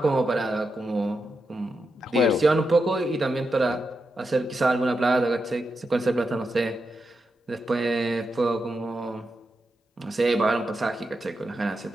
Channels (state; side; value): normal; both; correlation 0.87